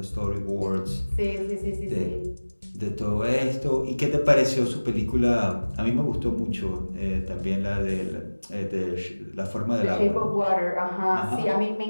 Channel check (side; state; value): both; inverted; correlation -1.00